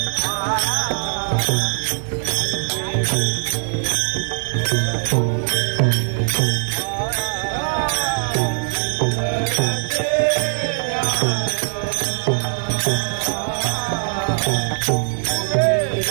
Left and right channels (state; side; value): silent; left; digital silence